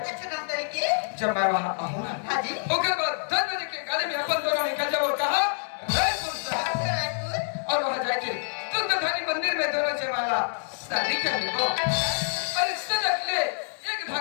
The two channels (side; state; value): right; silent; digital silence